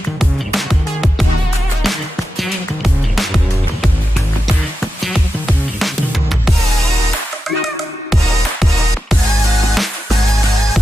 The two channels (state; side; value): normal; both; correlation 0.90